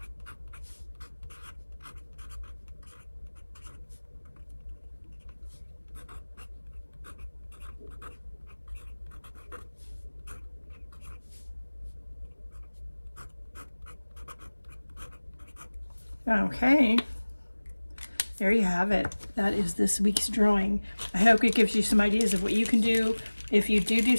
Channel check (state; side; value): inverted; both; correlation -1.00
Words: Okay, there you have it. That is this week's drawing. I hope it gives you some ideas of what you can do if you do